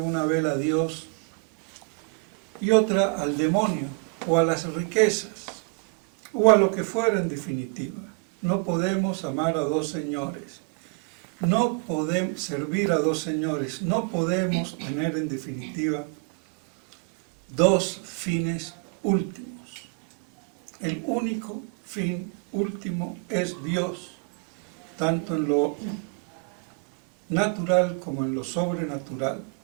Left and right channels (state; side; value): quieter; left; 35.9 dB